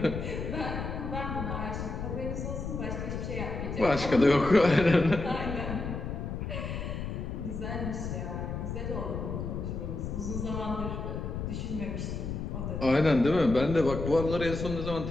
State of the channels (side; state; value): left; noise; rumble, 5 dB below the sound